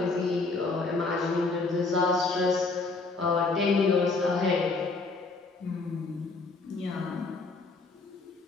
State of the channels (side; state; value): right; quieter; 3.8 dB